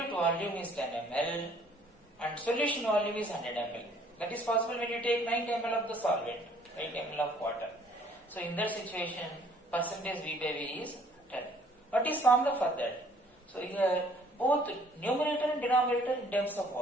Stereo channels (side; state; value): both; normal; correlation 0.59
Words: volume is 10 ml and solution volume is 100 ml, that is possible when you take 90 ml of the solvent, 90 ml of water. So in that situation, percentage V by V is 10. What is formula for that? So here, both numerator and denominator in terms of